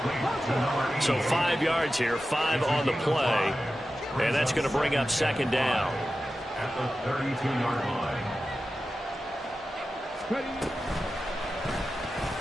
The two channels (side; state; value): both; normal; correlation 0.93